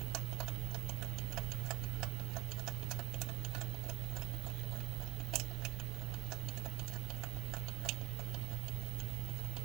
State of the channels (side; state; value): left; quieter; 21.5 dB